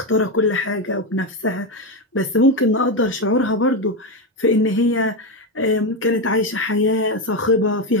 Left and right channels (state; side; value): normal; both; correlation 0.10